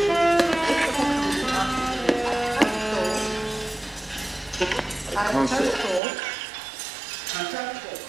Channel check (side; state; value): left; drops out; at 6.0 s